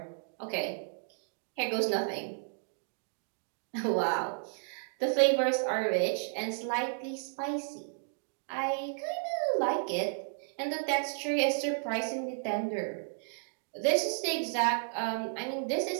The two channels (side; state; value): left; silent; digital silence